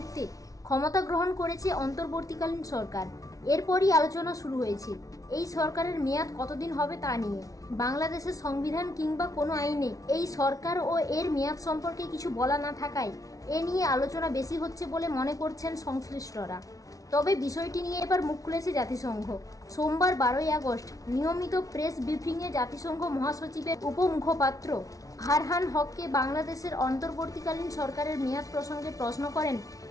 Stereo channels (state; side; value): late; right; 0.17 ms